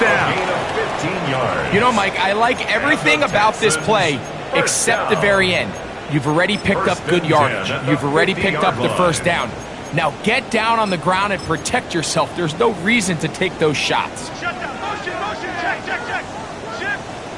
Gain of 15 yards. You know, Mike, I like everything about this play except the very end. You've already picked up good yardage. You've already picked up the first down. Now get down on the ground and protect yourself. There's no reason to take those shots. Shut down. Motion, motion. Check, check, check. Shift.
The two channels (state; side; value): identical; both; correlation 1.00